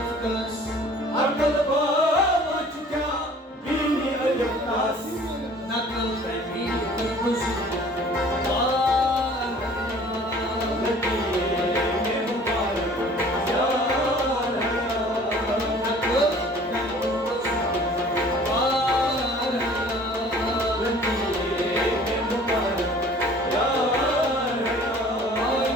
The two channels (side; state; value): both; normal; correlation 0.50